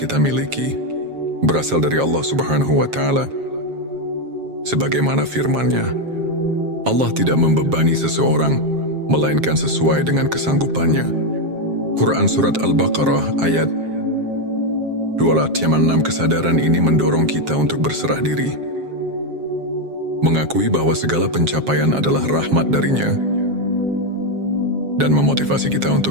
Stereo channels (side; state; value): left; late; 7.4 ms